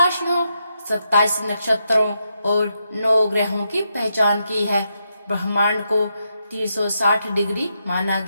27 नक्षत्रों और 9 ग्रहों की पहचान की है। ब्रह्मांड को 360 डिग्री माना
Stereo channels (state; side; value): inverted; both; correlation -0.82